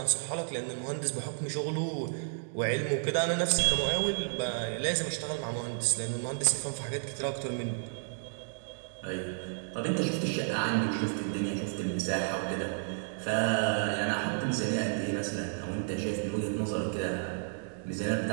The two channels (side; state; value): left; silent; 56 dB below the other